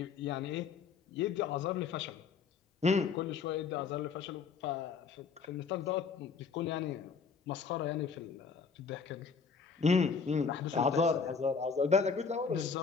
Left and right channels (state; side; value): quieter; right; 5.5 dB